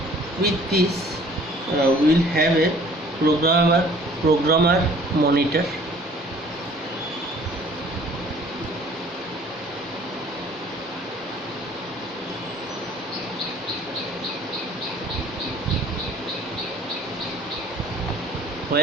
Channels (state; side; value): normal; both; correlation 0.53